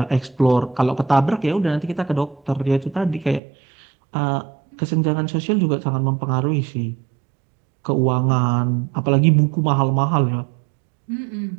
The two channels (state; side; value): drops out; left; at 3.4 s